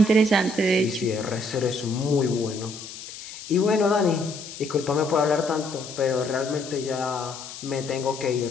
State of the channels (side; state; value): left; noise; hiss, 13 dB below the sound